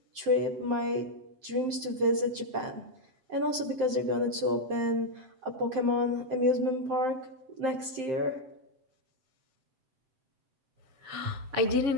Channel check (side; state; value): left; late; 7.7 ms